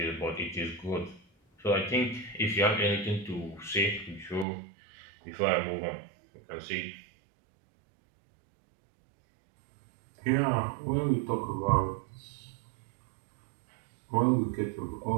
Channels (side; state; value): left; drops out; at 4.5 s